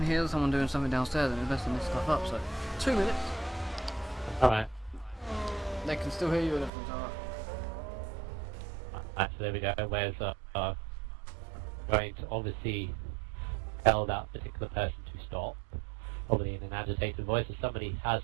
hear someone doing something downstairs and messing this stuff up. So 2 minutes. Alright. They can still hear you and everything's alright. So there we go. Where's going to obviously tell that particular person to stop, probably in an agitated voice, as somebody has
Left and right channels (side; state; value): left; drops out; at 6.7 s